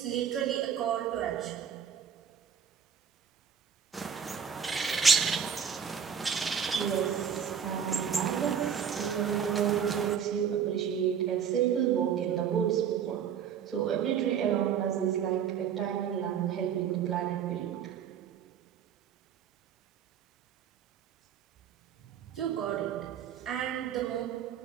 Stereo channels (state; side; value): quieter; left; 7.7 dB